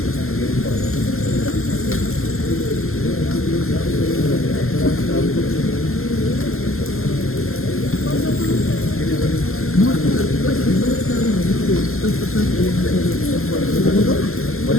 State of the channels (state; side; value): late; right; 0.62 ms